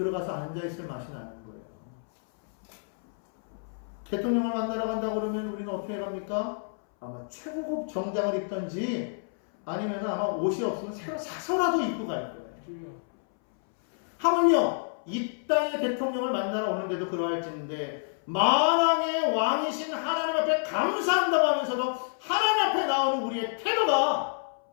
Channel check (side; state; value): right; silent; 59 dB below the other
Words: 앉아있을 맛이 나는 거예요. 대통령을 만나러 간다고 그러면 우리는 어떻게 갑니까? 아마 최고급 정장을 입던지 아니면 아마 옷이 없으면 새로 사서라도 입고 갈 거예요. 하물며 이 땅의 대통령을 만나러 오는데도 그러할지인데 만왕의 왕이신 하나님 앞에 감사한다고 하면서도 하나님 앞에 나오는 우리의 태도가